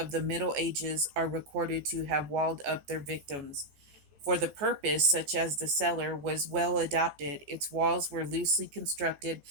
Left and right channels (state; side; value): late; left; 14 ms